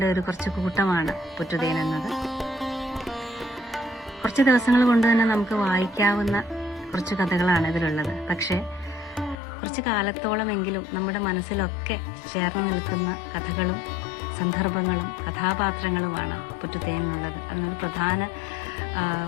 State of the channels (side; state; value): right; drops out; at 9.3 s